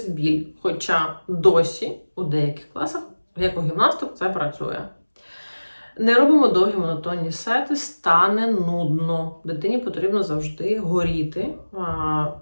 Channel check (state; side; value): inverted; both; correlation -1.00